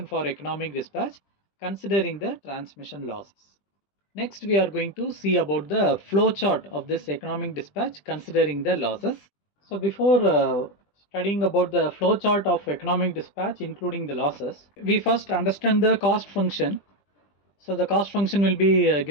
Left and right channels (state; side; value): late; right; 20 ms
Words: for economic dispatch considering the transmission losses. Next we are going to see about the flow chart of this economic dispatch considering the losses. So before studying about the flow chart of economic dispatch including the losses, we first understand the cost function. So the cost function will be